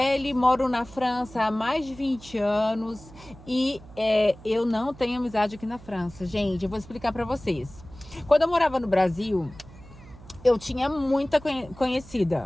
moro na França há mais de 20 anos e eu não tenho amizade aqui na França. Gente, eu vou explicar para vocês. Quando eu morava no Brasil, eu tinha muita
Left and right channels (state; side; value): noise; right; hum, 20 dB below the sound